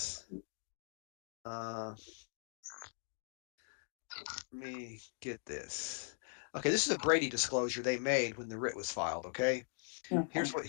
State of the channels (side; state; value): right; silent; 51 dB below the other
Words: Let me get this. Okay, this is a Brady disclosure they made when the writ was filed. Okay, here's what